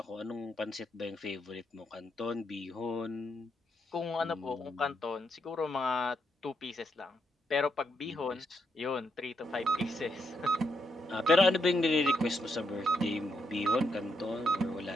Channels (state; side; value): normal; both; correlation 0.79